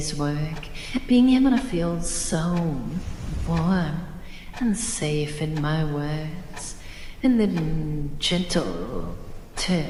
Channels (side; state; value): both; identical; correlation 1.00